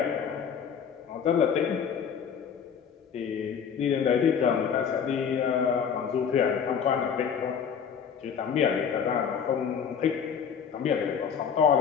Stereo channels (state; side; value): quieter; right; 7.2 dB